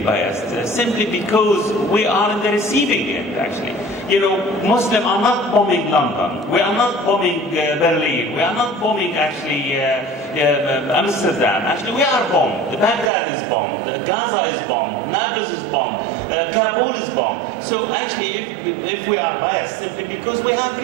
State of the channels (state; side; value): drops out; left; at 13.1 s